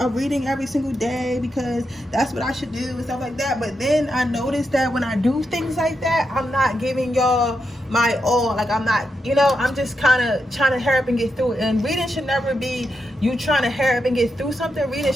reading every single day, because that's what I should do and stuff like that. But then I noticed that when I do things like that, I'm not giving y'all my all. Like, I'm not, you know, I'm just kind of trying to hurry up and get through it. And reading should never be you trying to hurry up and get through something. Reading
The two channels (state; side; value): normal; both; correlation 0.85